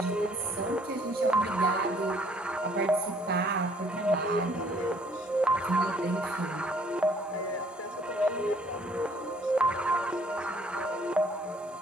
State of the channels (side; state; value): both; normal; correlation 0.61